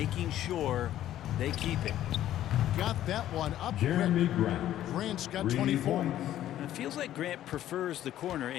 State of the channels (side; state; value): right; quieter; 12.5 dB